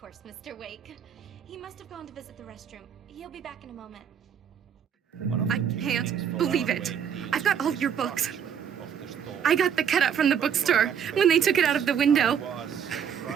Mr. Wake. He must have gone to visit the restroom. He'll be back in a moment. I can't believe it. I've got all your books. I got the cutout from the bookstore when they took it out of the window.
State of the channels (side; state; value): left; quieter; 8.1 dB